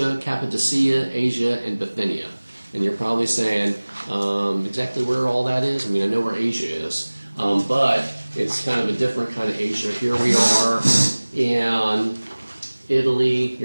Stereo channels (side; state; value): both; inverted; correlation -1.00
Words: Cappadocia, Asia, and Bithynia. And you're probably saying, exactly where all that is? I mean, I know where Asia is, but it's kind of a different kind of Asia. Here we are in Italy.